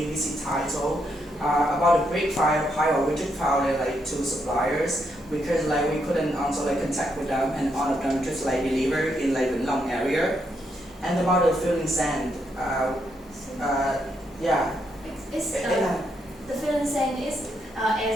title. About the brick fire pipe, we just found like 2 suppliers because like we couldn't also like contact with them, and all of them just like deliver in like the long area. And about the filling sand, yeah. The filling sand is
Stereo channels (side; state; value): both; normal; correlation 0.78